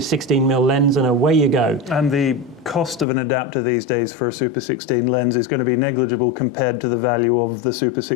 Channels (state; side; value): drops out; right; at 3.1 s